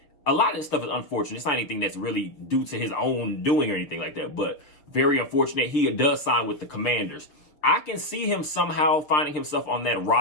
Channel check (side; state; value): right; late; 6.5 ms